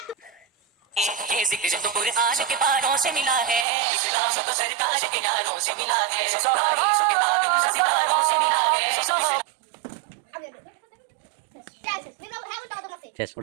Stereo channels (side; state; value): left; drops out; at 3.7 s